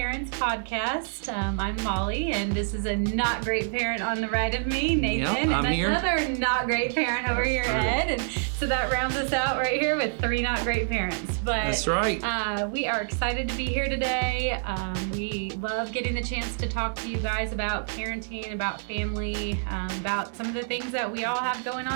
podcast. I'm Molly, and this is a not great parent on the right of me, Nathan, I'm and here. another not great parent over your head. And so that rounds us out right here with three not great parents. But That's right. We are excited to be here today. We love getting the chance to talk to you guys about parenting, about family, about some of the things that we all have going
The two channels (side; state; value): left; silent; digital silence